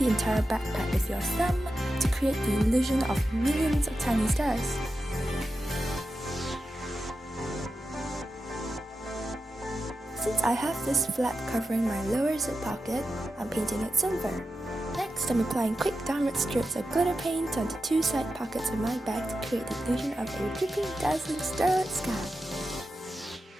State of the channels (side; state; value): both; normal; correlation 0.91